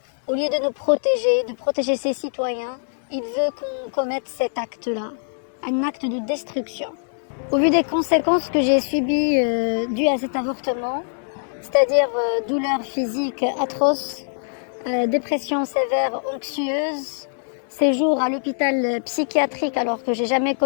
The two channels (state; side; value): silent; right; digital silence